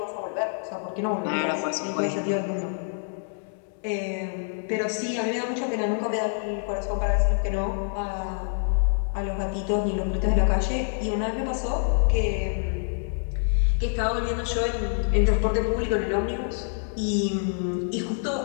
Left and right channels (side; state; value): right; silent; digital silence